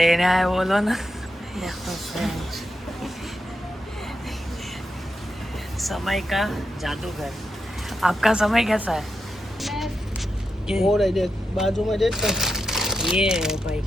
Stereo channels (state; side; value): normal; both; correlation 0.86